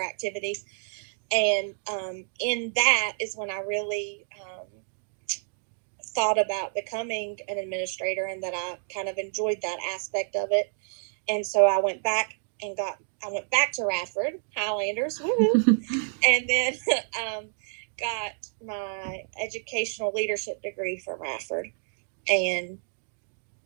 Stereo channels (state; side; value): silent; left; digital silence